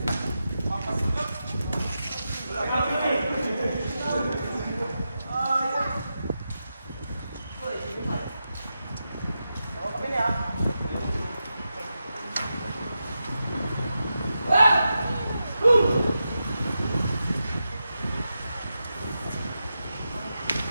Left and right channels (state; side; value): inverted; both; correlation -0.89